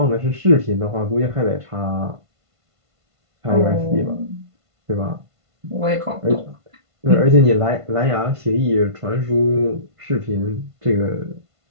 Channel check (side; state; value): left; late; 1.5 ms